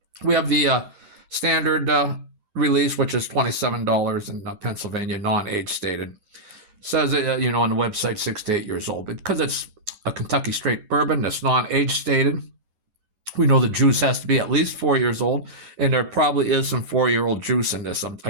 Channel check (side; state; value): left; late; 11 ms